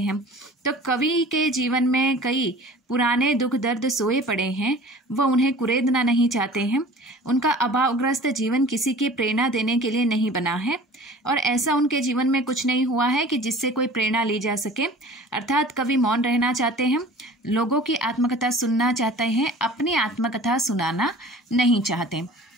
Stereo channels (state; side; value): normal; both; correlation 0.44